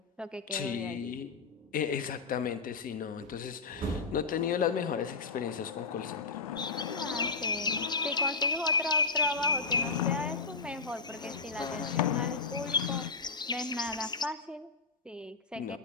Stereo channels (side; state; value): right; quieter; 4.5 dB